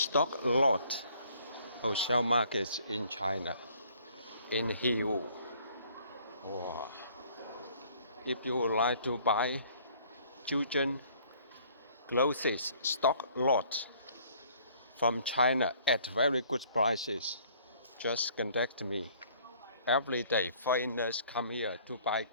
lot wholesale market in China, in Yiwu. Wow. If you would like to buy children clothes stock lot from China at very good prices, just contact me. Every day foreigners come here to buy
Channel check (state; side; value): inverted; both; correlation -0.59